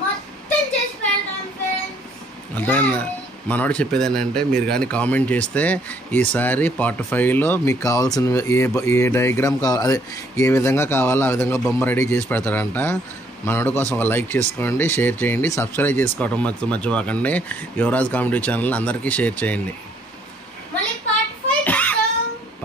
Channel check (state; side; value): normal; both; correlation 0.66